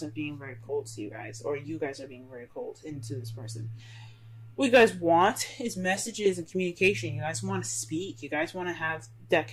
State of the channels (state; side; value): identical; both; correlation 1.00